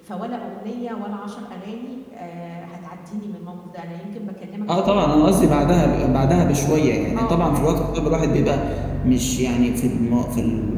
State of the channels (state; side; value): identical; both; correlation 1.00